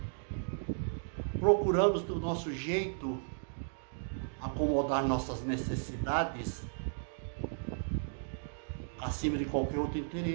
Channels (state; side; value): silent; left; digital silence